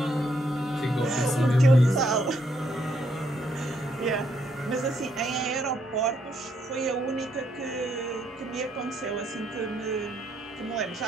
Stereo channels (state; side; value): normal; both; correlation 0.74